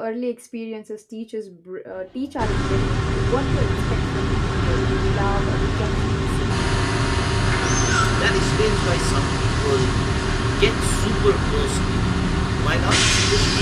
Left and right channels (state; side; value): identical; both; correlation 1.00